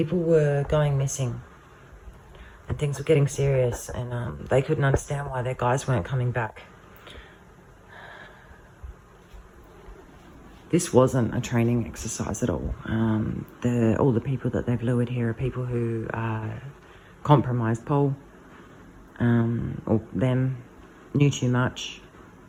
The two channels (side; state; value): both; identical; correlation 1.00